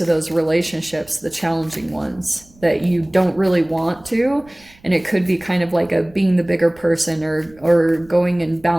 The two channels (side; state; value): right; noise; rumble, 28 dB below the sound